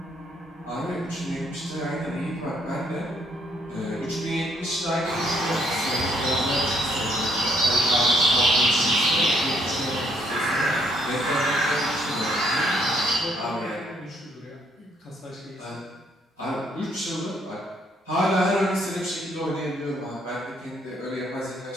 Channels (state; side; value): normal; both; correlation 0.69